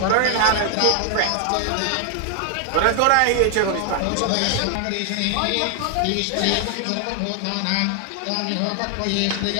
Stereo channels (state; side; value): different; both; correlation 0.00